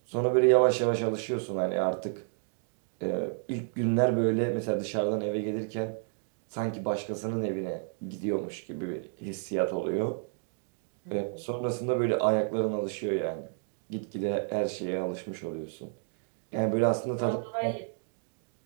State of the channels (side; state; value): left; silent; 56 dB below the other